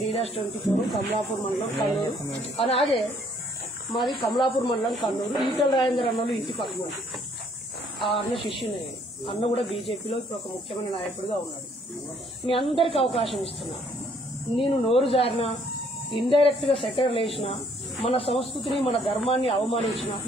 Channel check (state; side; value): normal; both; correlation 0.64